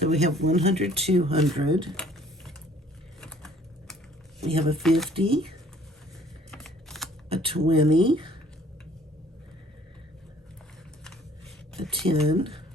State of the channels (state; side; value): normal; both; correlation 0.57